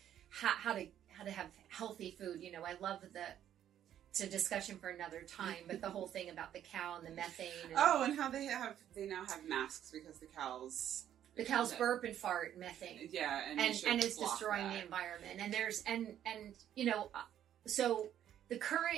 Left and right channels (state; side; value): quieter; left; 10.7 dB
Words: how to have healthy food. I love it's a discussion for another time, but the whole thing about the cow and the methane. And and how they now have masks because the cows burp and fart methane. Yeah, and it's destroying the environment. And there's so the